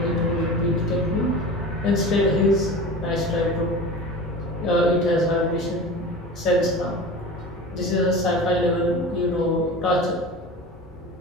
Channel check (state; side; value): normal; both; correlation 0.34